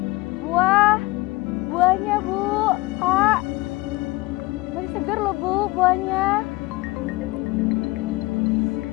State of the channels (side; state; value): right; quieter; 21.5 dB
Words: Buahnya, Bu. Pak. Masih segar loh, Bu, buahnya.